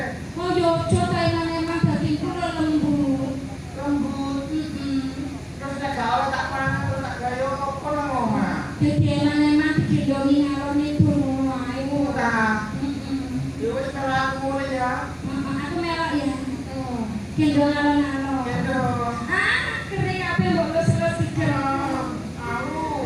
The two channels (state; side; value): identical; both; correlation 1.00